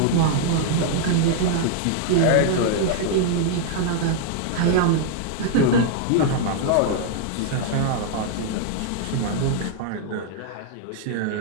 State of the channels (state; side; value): different; both; correlation -0.01